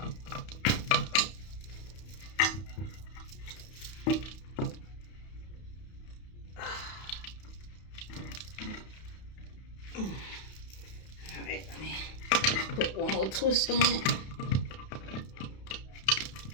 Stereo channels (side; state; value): right; late; 32 ms